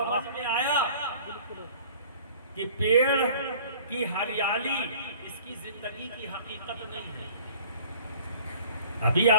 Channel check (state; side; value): inverted; both; correlation -0.48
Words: में आया कि पेड़ की हरियाली इसकी जिंदगी की हकीकत नहीं है। अभी